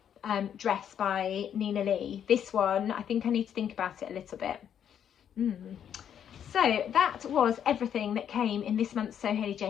dress by Nina Lee. This one, I think I need to think about it a little bit. So that was everything that came in this month's Sew Hayley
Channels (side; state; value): right; quieter; 9.0 dB